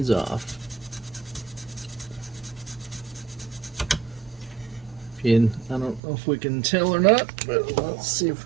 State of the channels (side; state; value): left; drops out; at 6.0 s